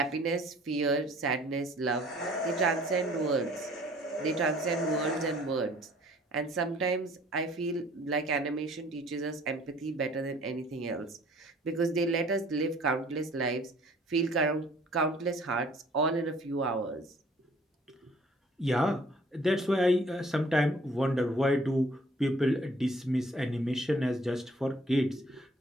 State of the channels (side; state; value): both; normal; correlation 0.55